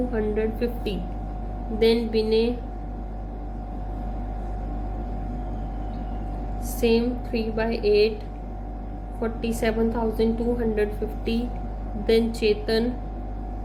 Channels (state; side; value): identical; both; correlation 1.00